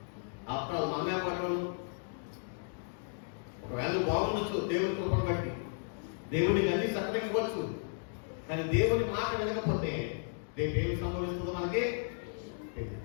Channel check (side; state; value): right; silent; digital silence